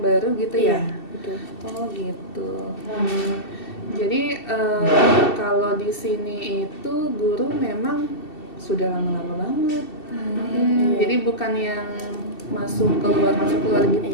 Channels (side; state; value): right; late; 2.7 ms